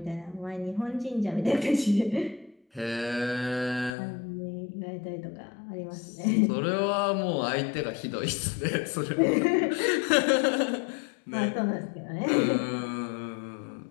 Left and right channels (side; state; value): right; drops out; at 4.0 s